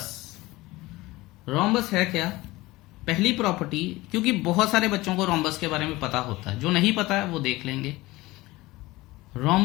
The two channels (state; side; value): quieter; right; 19.8 dB